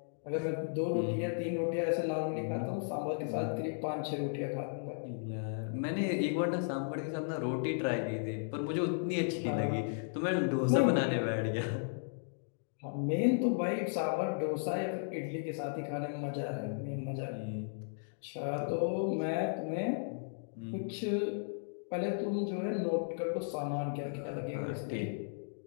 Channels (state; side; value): silent; right; digital silence